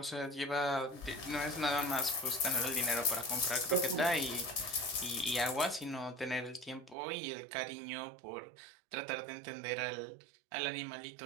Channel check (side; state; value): left; drops out; at 7.0 s